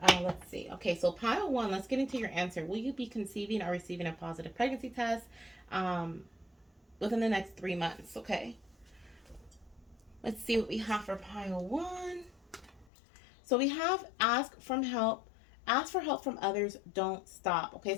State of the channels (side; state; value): right; drops out; at 12.9 s